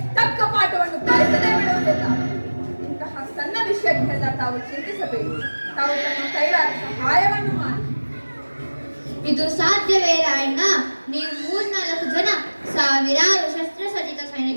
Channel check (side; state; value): both; inverted; correlation -1.00